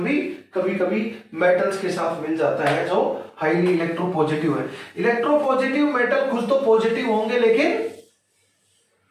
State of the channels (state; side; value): identical; both; correlation 1.00